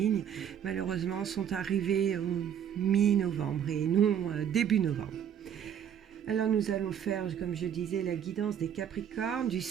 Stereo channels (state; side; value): quieter; left; 9.0 dB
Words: malheureusement, sont arrivées au mi-novembre et non début novembre. Alors nous allons faire, comme je disais, la guidance des Capricornes du